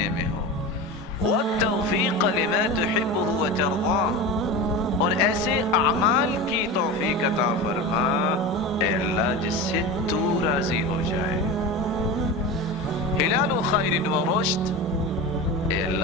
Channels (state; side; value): normal; both; correlation 0.26